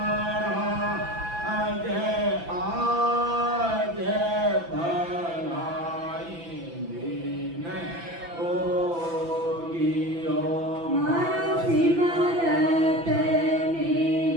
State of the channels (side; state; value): left; late; 6.0 ms